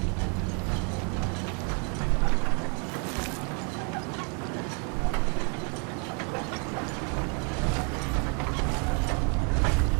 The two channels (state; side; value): quieter; left; 37.5 dB